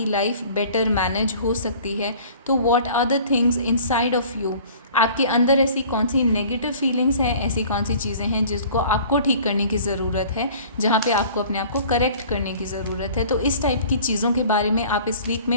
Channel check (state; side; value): inverted; both; correlation -0.48